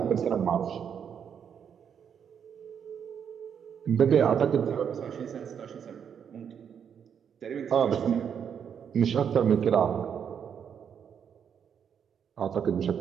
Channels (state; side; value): quieter; left; 7.8 dB